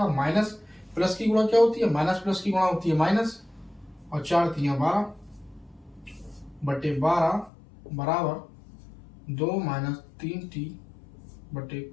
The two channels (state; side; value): drops out; right; at 7.5 s